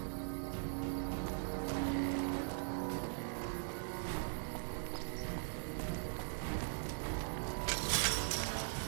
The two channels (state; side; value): silent; left; digital silence